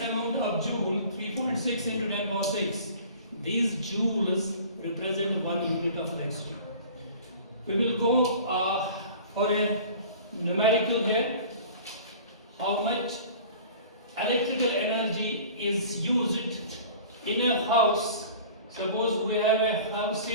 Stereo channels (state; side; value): inverted; both; correlation -0.44